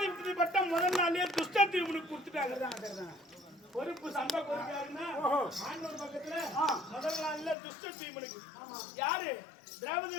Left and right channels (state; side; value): drops out; right; at 7.6 s